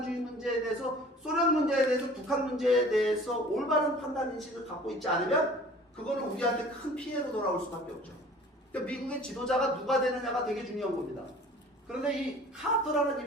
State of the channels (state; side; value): normal; both; correlation 0.47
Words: 문제에 대해서 소련 문제에 대해서 북한 문제에 대해서 올바른 판단 인식을 갖고 있지 않으면 그거는 우리한테 큰 피해로 돌아올 수밖에 없죠. 그러니까 미국의 지도자가 누가 되느냐가 되게 중요한 겁니다. 그런데 이 카터라는